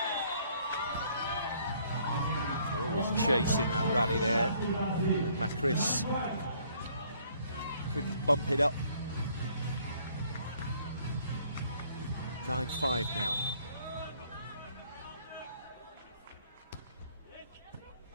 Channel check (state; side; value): inverted; both; correlation -0.63